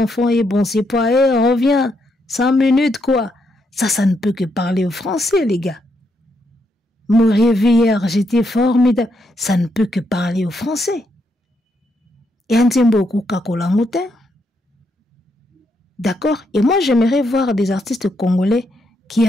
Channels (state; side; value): normal; both; correlation 0.78